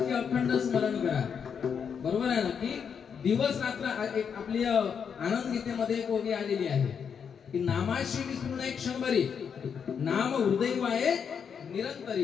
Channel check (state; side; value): quieter; right; 7.0 dB